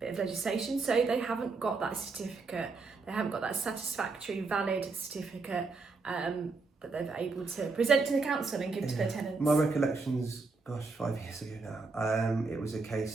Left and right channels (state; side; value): quieter; left; 4.1 dB